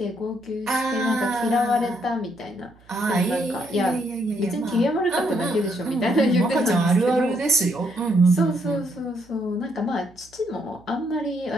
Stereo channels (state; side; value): noise; right; hum, 28 dB below the sound